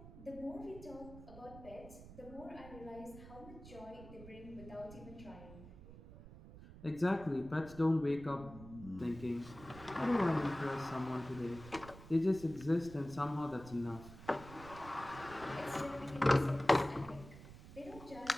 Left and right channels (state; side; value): noise; right; rumble, 16 dB below the sound